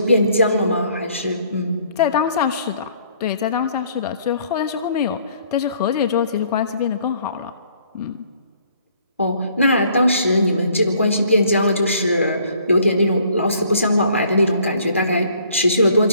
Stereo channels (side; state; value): both; inverted; correlation -0.61